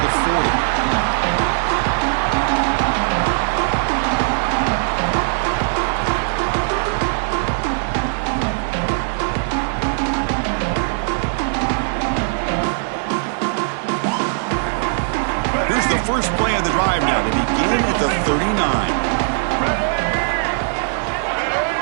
the 40. Here's the first play of the drive now. They begin at the 39.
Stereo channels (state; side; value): silent; left; 66 dB below the other